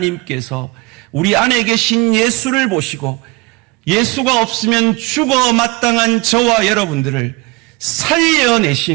우리 안에 계신 예수를 보시고 예수가 없으면 죽어 마땅한 저와 여러분들을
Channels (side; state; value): left; quieter; 23.4 dB